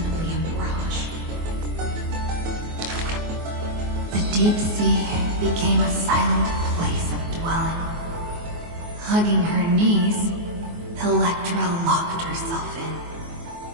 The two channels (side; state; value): left; late; 24 ms